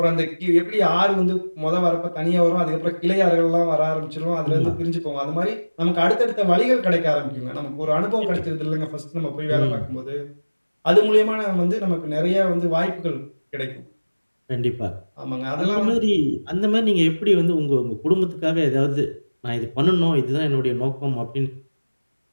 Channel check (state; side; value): inverted; both; correlation -1.00